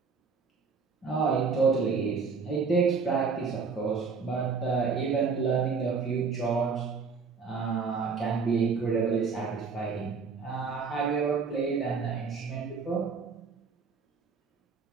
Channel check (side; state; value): left; quieter; 5.2 dB